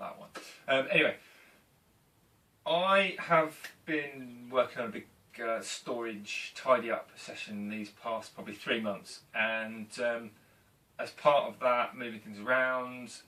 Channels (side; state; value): both; identical; correlation 1.00